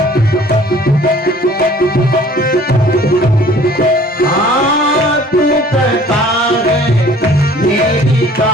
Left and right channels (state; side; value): normal; both; correlation 0.52